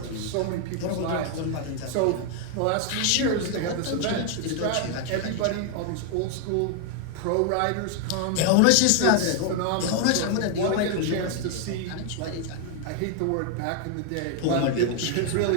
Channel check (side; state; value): both; different; correlation 0.00